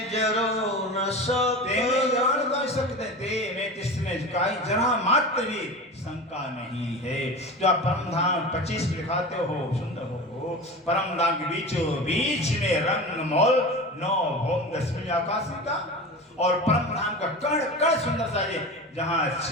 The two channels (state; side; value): normal; both; correlation 0.30